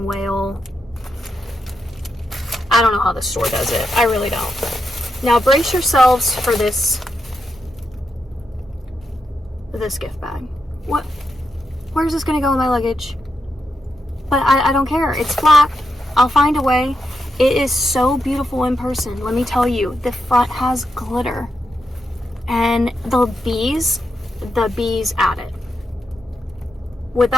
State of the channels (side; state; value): both; normal; correlation 0.84